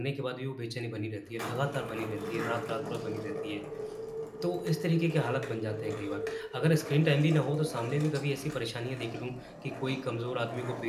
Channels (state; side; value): identical; both; correlation 1.00